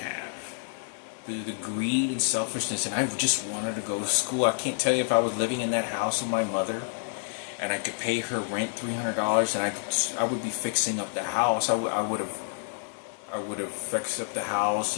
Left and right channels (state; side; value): silent; right; 59 dB below the other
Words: The greed and selfishness, and I just wanted to go to school. I can't tell you, if I was living in that house with my mother and I could pay her rent $300 and I would be fixing up the house, I would have fixed up the house,